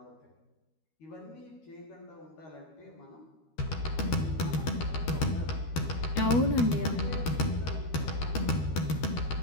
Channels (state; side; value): late; right; 13 ms